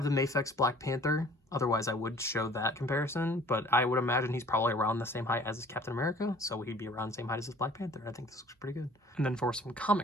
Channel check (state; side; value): normal; both; correlation 0.51